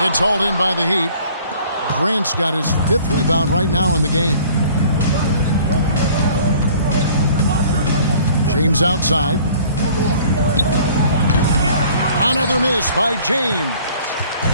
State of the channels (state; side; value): inverted; both; correlation -0.52